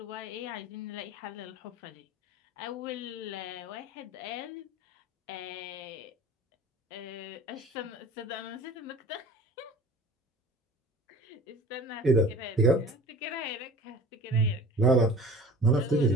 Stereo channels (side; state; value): both; normal; correlation 0.42